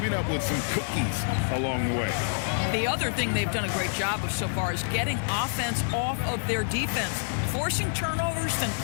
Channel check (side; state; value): right; silent; 60 dB below the other